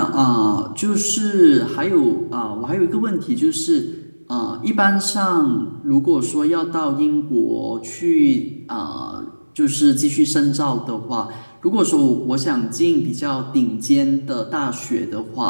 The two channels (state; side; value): inverted; both; correlation -1.00